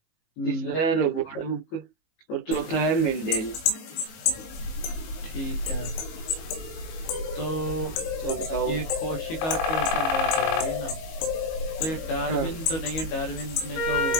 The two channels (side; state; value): right; late; 19 ms